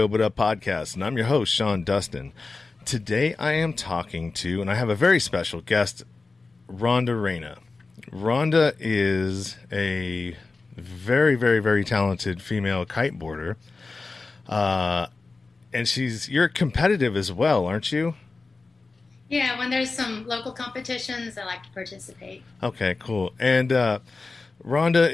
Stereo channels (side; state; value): right; quieter; 3.9 dB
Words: But Up podcast, and I'm your host, Sean Dustin. Today I am talking to, and I have a very special guest, Rhonda Reyna. Rhonda is a very, very, very talented female kiteboarder, and you're competitive as well, aren't you? Yeah, when there's some local competitions, I like to participate. Okay, cool. And Rhonda